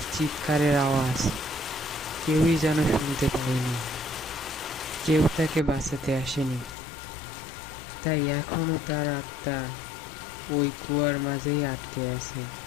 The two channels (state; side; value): drops out; right; at 6.8 s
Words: চিৎকারের আওয়াজ কেউই যেন শুনতে পায়নি। কেউ তাকে বাঁচাতে আসেনি। তাই এখনো তার আত্মা ওই কুয়ার মাঝেই আটকে আছে।